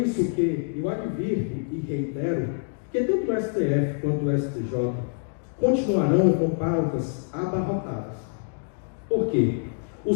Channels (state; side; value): silent; right; digital silence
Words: que eu advirto e reitero que tanto o STF quanto o STJ continuarão com pautas abarrotadas Por quê?